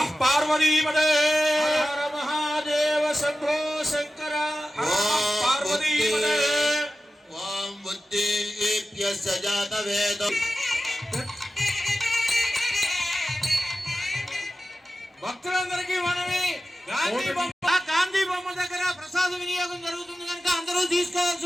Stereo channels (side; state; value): both; normal; correlation 0.93